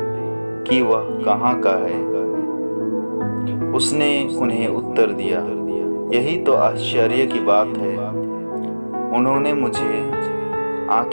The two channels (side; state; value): both; inverted; correlation -1.00